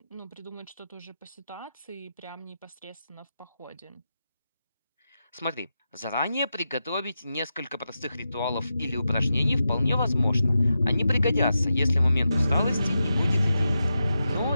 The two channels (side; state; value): both; inverted; correlation -0.89